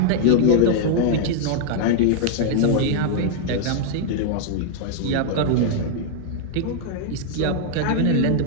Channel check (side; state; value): both; different; correlation -0.01